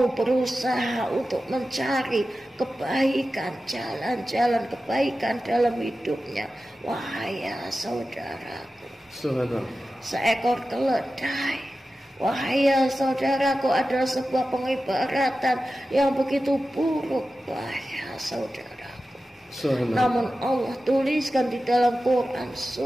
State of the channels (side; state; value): both; normal; correlation 0.93